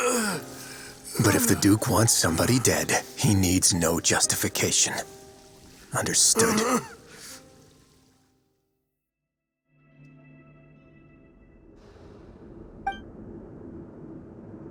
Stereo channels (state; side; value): identical; both; correlation 1.00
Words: But if the Duke wants somebody dead, he needs no justification. Understood?